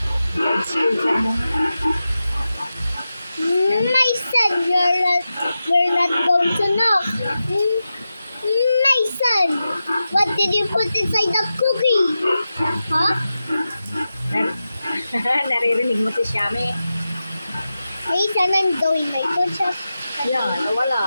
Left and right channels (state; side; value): inverted; both; correlation -0.92